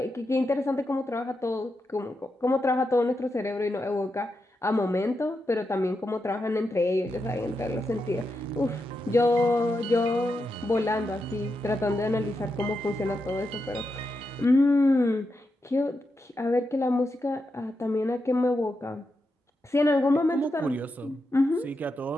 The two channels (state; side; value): normal; both; correlation 0.86